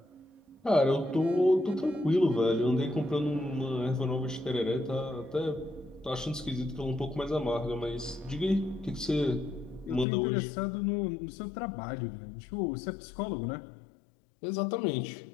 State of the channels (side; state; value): right; drops out; at 10.1 s